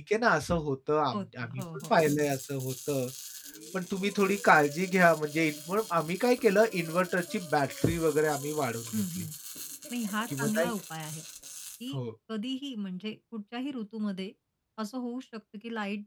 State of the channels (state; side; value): identical; both; correlation 1.00